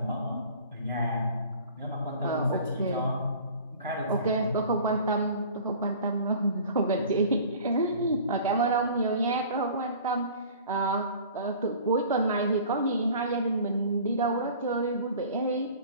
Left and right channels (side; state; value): both; inverted; correlation -0.45